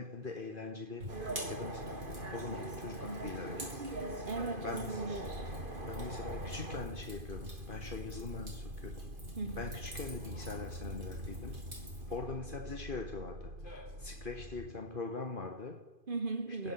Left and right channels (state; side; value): late; left; 2.5 ms